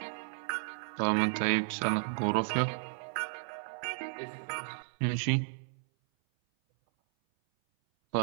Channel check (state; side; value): silent; left; 56 dB below the other